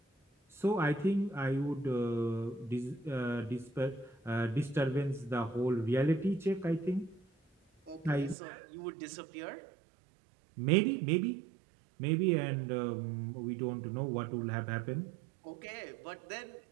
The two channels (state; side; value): drops out; left; at 8.3 s